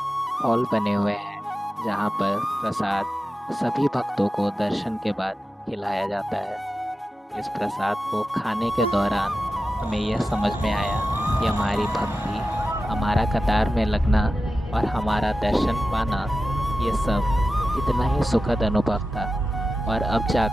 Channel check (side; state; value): both; normal; correlation 0.93